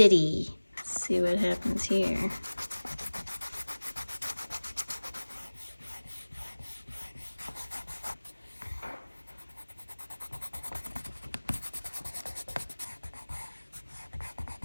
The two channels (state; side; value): inverted; both; correlation -1.00